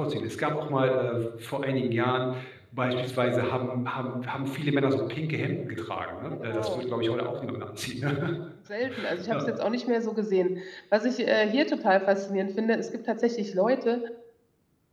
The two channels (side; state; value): both; identical; correlation 1.00